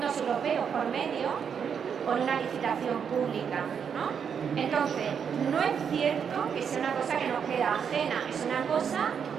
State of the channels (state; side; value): quieter; left; 7.2 dB